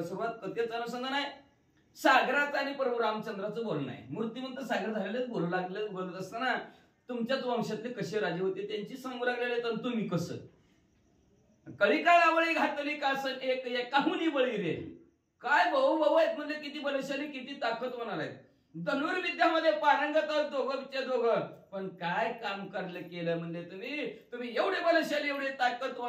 सुरुवात. कथेचं अनुसंधान आहे सागराचं आणि प्रभू रामचंद्राचं बोलणं आहे. मूर्तिमंत सागर झालेले बोलू लागले. बोलत असताना तुमच्याच वंशातले कसे राजे होते त्यांची सांगू लागलेले तर तुम्ही कसं. कळीकाळावळी घातली कासन एक एकाहुनी बळी रे. काय भाऊ भाऊ आहेत म्हणजे किती बलशाली किती ताकदवान आहेत. धनुर्विद्यामध्ये पारंगत आहोत दोघं. पण काय काम केलं म्हणजे तुम्ही एवढे बलशाली एवढे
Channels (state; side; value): identical; both; correlation 1.00